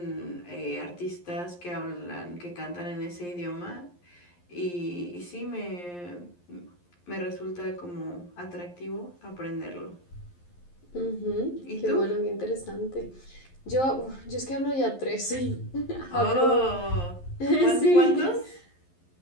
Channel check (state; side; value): late; right; 11 ms